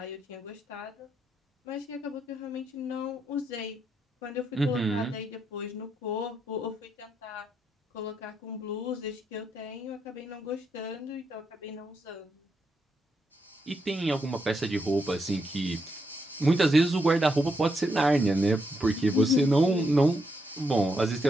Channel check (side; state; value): both; normal; correlation 0.80